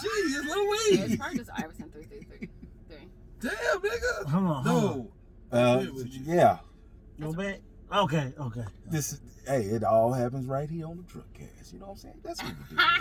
it's Lil Weed. It's probably just Iverson 333. Damn, nigga. Hold on. Yeah. No bad. Okay. It all happens right here on the truck cast. You know what I'm saying? That's what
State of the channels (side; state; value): both; identical; correlation 1.00